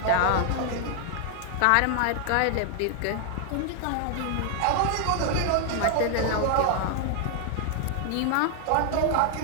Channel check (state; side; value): different; both; correlation 0.00